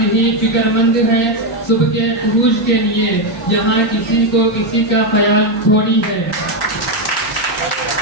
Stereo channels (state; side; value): normal; both; correlation 0.05